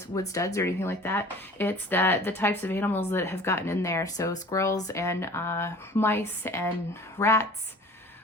wood studs or anything like that. It's that the types of animals that have gotten in there. So squirrels and mice and rats.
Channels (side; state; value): both; normal; correlation 0.45